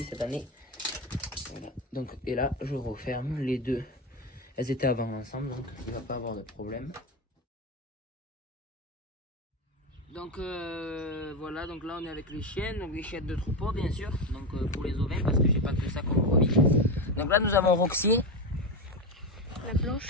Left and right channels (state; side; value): normal; both; correlation 0.15